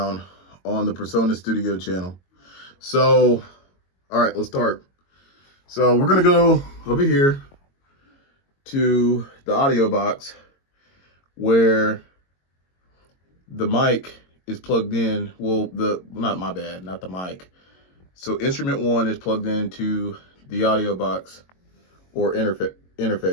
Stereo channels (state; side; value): late; right; 22 ms